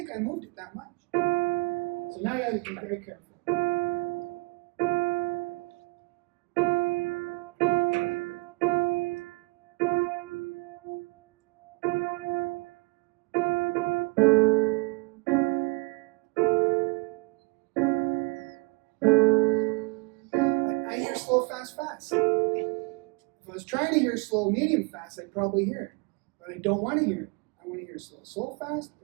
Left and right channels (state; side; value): quieter; left; 28.9 dB